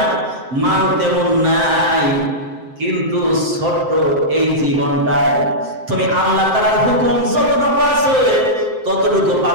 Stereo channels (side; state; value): left; late; 7.7 ms